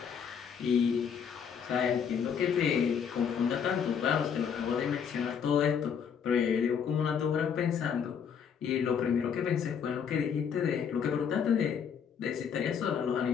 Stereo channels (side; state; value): right; quieter; 7.3 dB